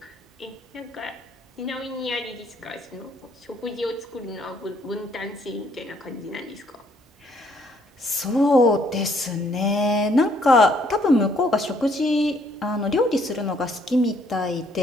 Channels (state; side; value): normal; both; correlation 0.66